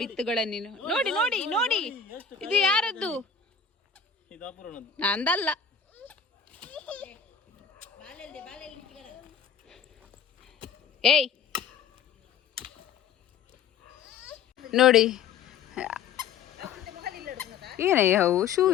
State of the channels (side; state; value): right; quieter; 6.7 dB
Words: ಬಿತ್ತುಗಳನ್ನು ನೋಡಿ ನೋಡಿ ನೋಡಿ, ಇದು ಯಾರದ್ದು? ನಂದಲ್ಲ. ಏಯ್ ನೋಡಿ, ಏನಯ್ಯ ಅವು